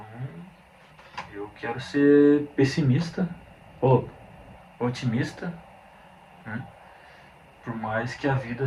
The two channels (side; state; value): both; identical; correlation 1.00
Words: eu quero ser pessimista ou otimista, né? Por mais que a vida